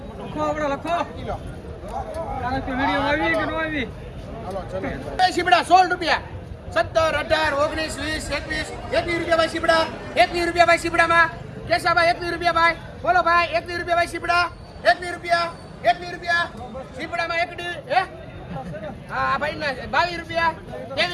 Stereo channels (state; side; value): identical; both; correlation 1.00